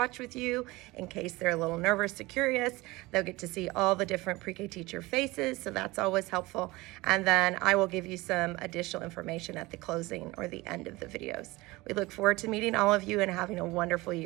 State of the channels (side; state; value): left; quieter; 21.2 dB